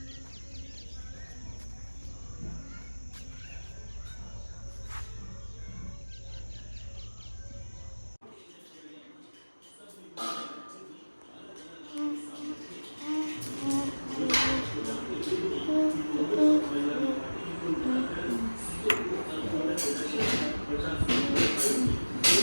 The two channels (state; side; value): inverted; both; correlation -1.00